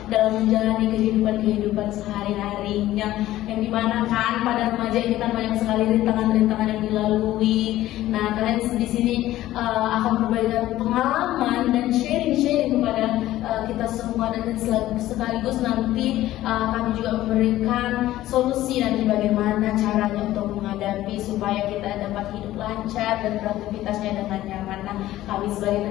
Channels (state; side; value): quieter; right; 14.9 dB